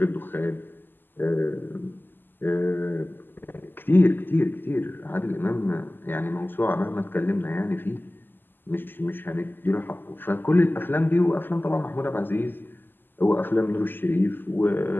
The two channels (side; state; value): right; late; 0.092 ms